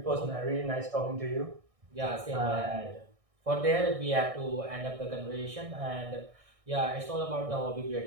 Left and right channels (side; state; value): left; late; 1.6 ms